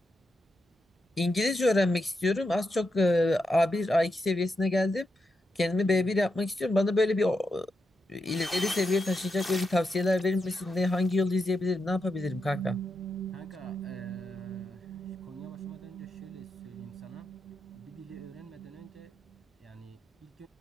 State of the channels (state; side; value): normal; both; correlation 0.85